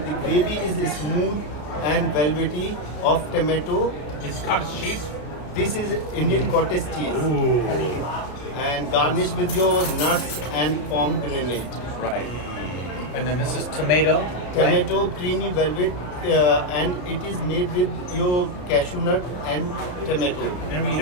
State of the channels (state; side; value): late; right; 33 ms